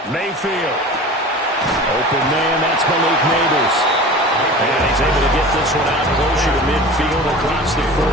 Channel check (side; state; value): both; normal; correlation 0.37